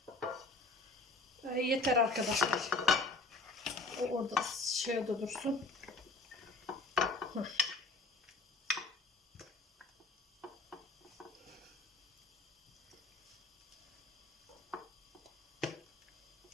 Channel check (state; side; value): quieter; right; 3.3 dB